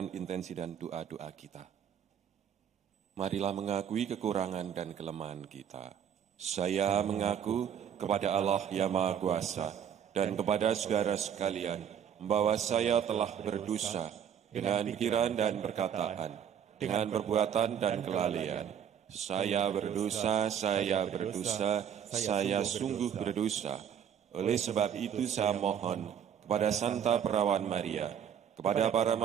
intensi, dan doa-doa kita. Marilah mengakui kekurangan dan kelemahan kita. Saya mengaku kepada Allah yang Maha Kuasa dan kepada saudara sekalian bahwa saya telah berdosa dengan pikiran dan perkataan, dengan perbuatan dan kelalaian. Saya berdosa, saya sungguh berdosa. Oleh sebab itu saya mohon kepada Santa Perawan Maria, kepada para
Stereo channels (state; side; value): quieter; left; 8.6 dB